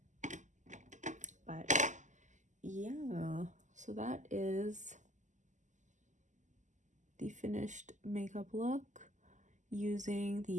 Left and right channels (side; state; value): left; late; 0.35 ms